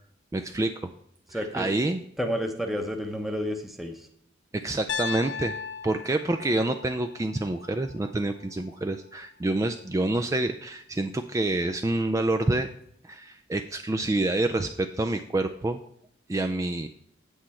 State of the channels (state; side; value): normal; both; correlation 0.69